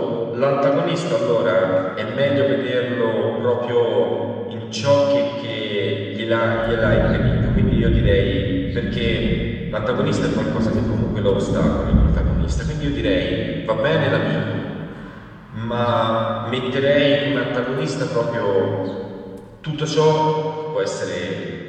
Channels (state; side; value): identical; both; correlation 1.00